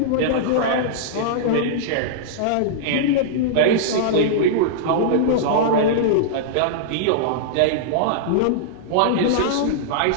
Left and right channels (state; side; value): different; both; correlation -0.02